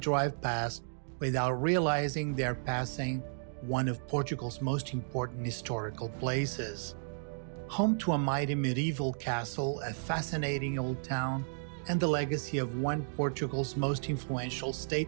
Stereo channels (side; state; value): left; silent; digital silence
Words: past without realizing they're passing one of Portugal's most important historical places. Home to a mighty medieval castle, a fascinating old town, and the legacy of one of Portugal's most influential